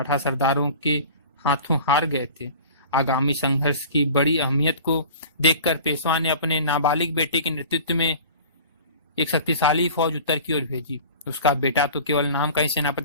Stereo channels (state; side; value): inverted; both; correlation -0.41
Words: सरदारों के हाथों हार गए थे। आगामी संघर्ष की बड़ी अहमियत को देखकर पेशवा ने अपने नाबालिग बेटे के नेतृत्व में एक शक्तिशाली फौज उत्तर की ओर भेजी। उसका बेटा तो केवल नाम का ही